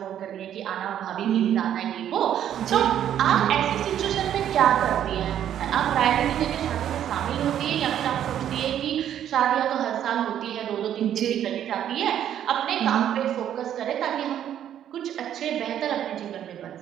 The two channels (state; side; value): quieter; left; 10.4 dB